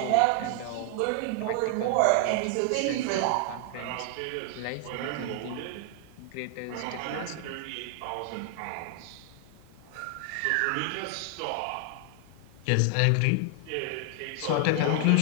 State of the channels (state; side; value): different; both; correlation 0.00